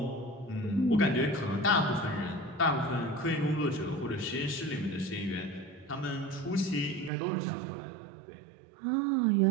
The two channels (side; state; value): left; drops out; at 7.1 s